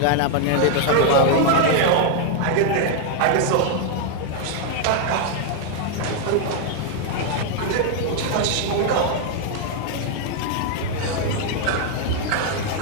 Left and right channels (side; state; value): both; different; correlation 0.00